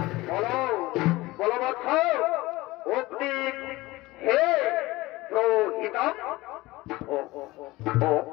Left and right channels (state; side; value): quieter; right; 19.8 dB